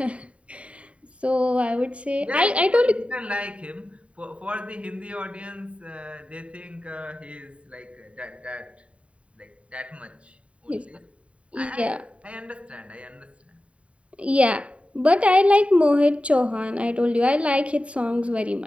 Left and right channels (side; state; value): left; late; 0.063 ms